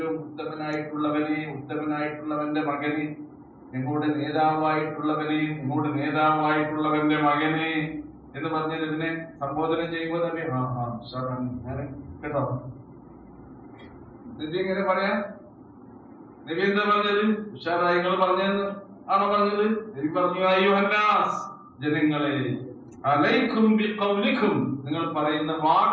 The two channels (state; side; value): identical; both; correlation 1.00